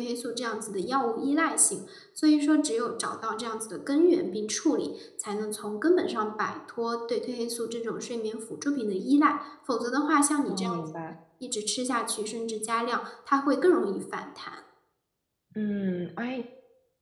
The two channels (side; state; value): both; identical; correlation 1.00